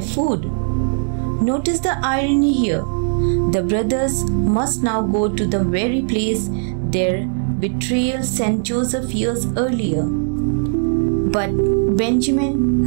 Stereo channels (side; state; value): left; silent; 67 dB below the other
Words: Notice the irony here. The brothers must now go to the very place their betrayal sent Joseph years earlier. But Benjamin,